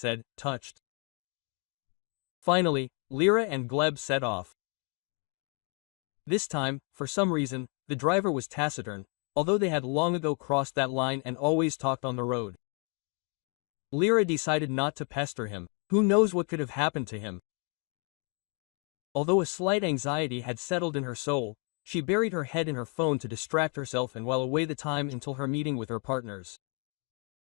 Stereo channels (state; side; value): quieter; right; 37.6 dB